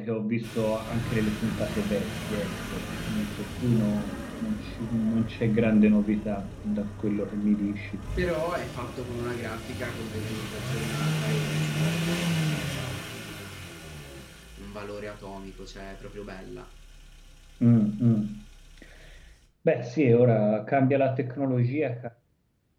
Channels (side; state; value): both; identical; correlation 1.00